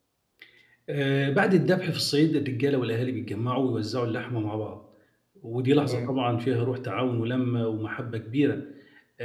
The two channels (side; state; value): both; identical; correlation 1.00